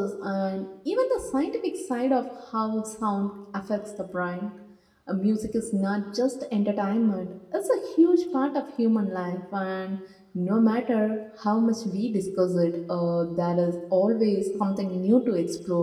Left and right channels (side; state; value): both; identical; correlation 1.00